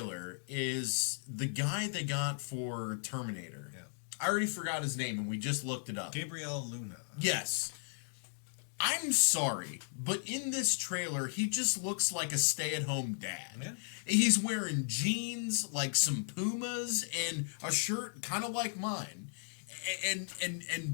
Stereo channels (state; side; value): silent; right; digital silence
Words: is the guy they got for Terminator. Yeah. I already forgot his name and we just looked it up. Gabriel Luna. Yes. I'm sorry, but in this trailer, he just looks like a stay-at-home dad. Yeah. He's wearing jeans, like some Pumas, and a shirt kind of like mine. And